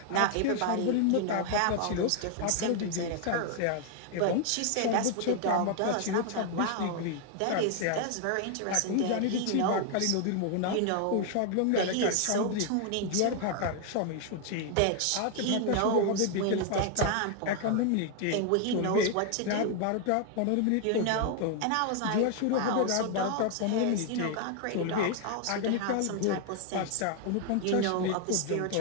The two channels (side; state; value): both; different; correlation 0.00